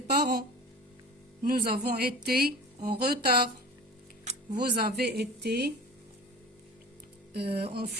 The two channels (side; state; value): both; normal; correlation 0.37